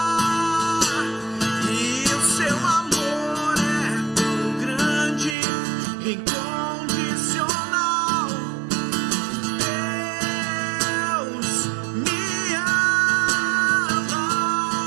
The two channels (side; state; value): left; drops out; at 5.4 s